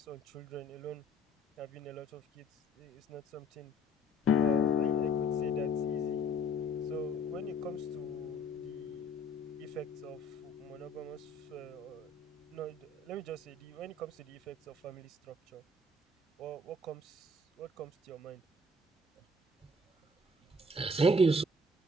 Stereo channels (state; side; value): normal; both; correlation 0.57